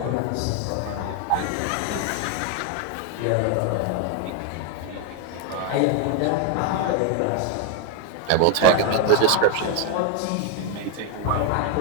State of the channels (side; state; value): both; different; correlation 0.00